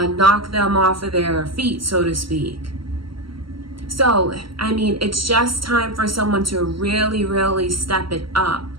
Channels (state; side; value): late; left; 0.74 ms